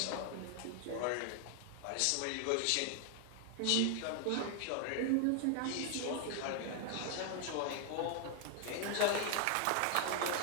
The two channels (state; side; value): different; both; correlation 0.00